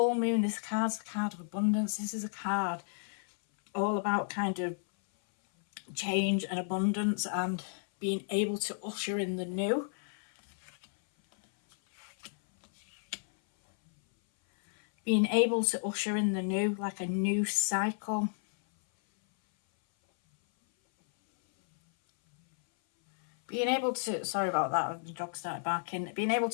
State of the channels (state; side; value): silent; right; 56 dB below the other